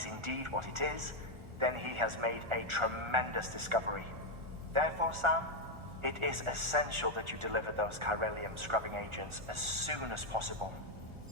indeed what it is, then he has made a tremendous discovery. Therefore, Sam, it is essential that you deliver those chiralium scrubbing agents as soon as possible.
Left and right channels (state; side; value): late; left; 1.4 ms